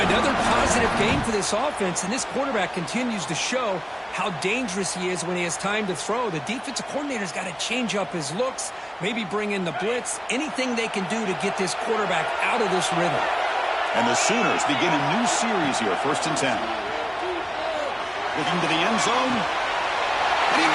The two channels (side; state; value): both; identical; correlation 1.00